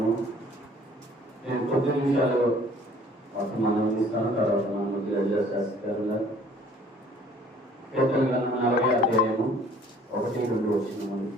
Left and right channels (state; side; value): normal; both; correlation 0.55